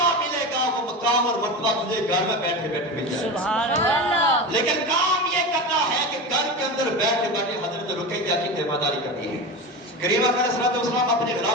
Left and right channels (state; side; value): normal; both; correlation 0.25